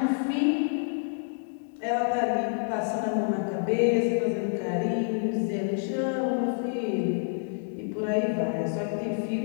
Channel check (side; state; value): right; silent; digital silence